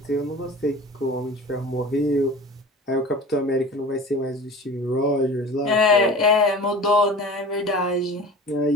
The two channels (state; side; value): normal; both; correlation 0.38